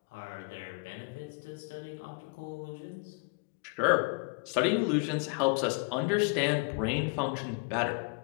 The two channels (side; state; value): right; quieter; 34.1 dB